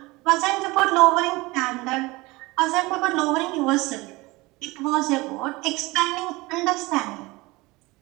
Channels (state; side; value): quieter; left; 22.3 dB